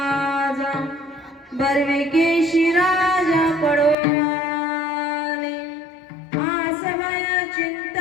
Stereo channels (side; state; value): right; drops out; at 4.0 s